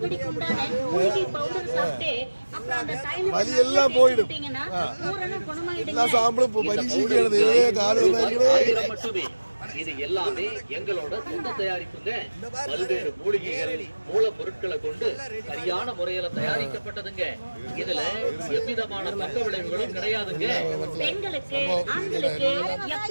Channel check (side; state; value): both; inverted; correlation -1.00